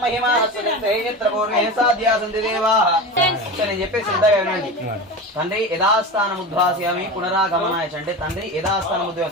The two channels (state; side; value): normal; both; correlation 0.27